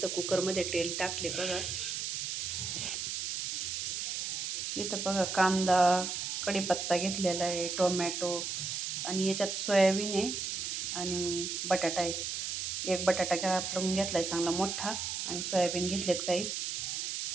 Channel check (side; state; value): right; noise; hiss, 3 dB below the sound